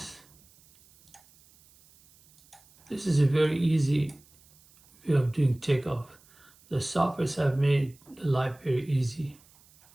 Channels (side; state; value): right; noise; hiss, 29 dB below the sound